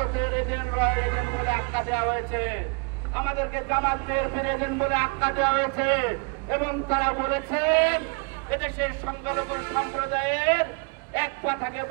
এজেন্ট, রয়্যাল এজেন্ট বলে আখ্যা দেওয়া হয়েছে, আমাদেরকে জামাত বিএনপির এজেন্ট বলে আখ্যা দেওয়া হয়েছে। এবং তারা বলেছেন এদেশের সংখ্যালঘু সম্প্রদায়ের এক পা থাকে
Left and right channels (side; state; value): left; quieter; 35.0 dB